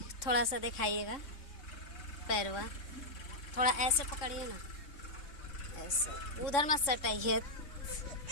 सा दिखाइएगा पैरवा। थोड़ा ऐसे पकड़िए ना, ऐसे उधर मत सटाइए।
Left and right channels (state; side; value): late; right; 3.6 ms